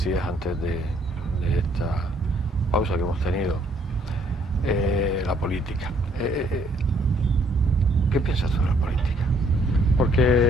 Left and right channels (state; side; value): normal; both; correlation 0.65